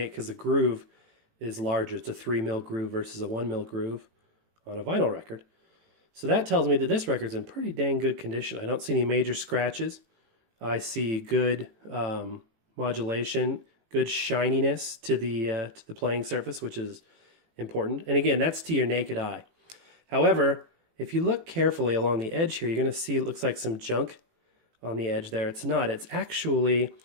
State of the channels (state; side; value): late; left; 18 ms